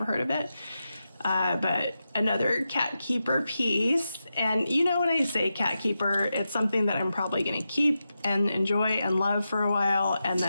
heard of it. But another cat keeper piece. And you know when I say cat keeper, it's something that I'm probably going to keep and enjoy and love for a while. And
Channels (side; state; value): both; inverted; correlation -0.89